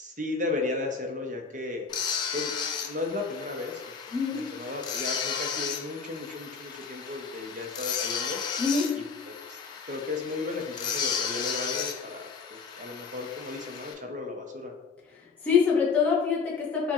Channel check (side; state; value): right; quieter; 5.1 dB